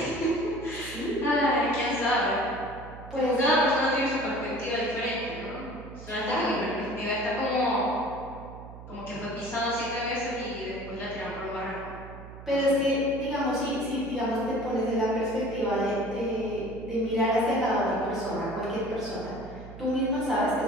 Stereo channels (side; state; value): right; noise; hum, 14 dB below the sound